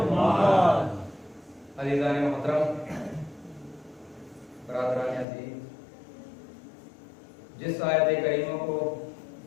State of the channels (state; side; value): drops out; right; at 5.2 s